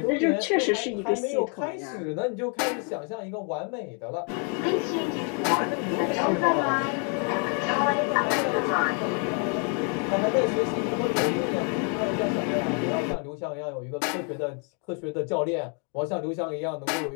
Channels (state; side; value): quieter; right; 39.4 dB